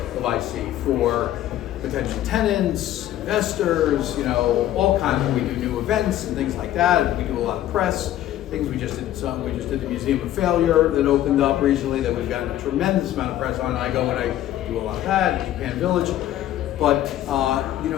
of IC for potential tenants, investors, all kinds of, we do new events and things like that, and we do a lot of press. Things we just did the Museum of Failure that opened up recently that we've gotten a tremendous amount of press on. I go and I do a lot of that in Japan Village. But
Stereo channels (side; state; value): right; quieter; 12.8 dB